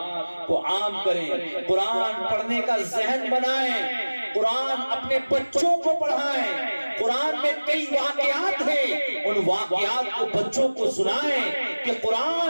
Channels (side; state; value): both; inverted; correlation -1.00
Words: کو عام کریں، قرآن پڑھنے کا ذہن بنائیں، قرآن اپنے بچوں کو پڑھائیں۔ قرآن میں کئی واقعات ہیں، ان واقعات کو بچوں کو سنائیں کہ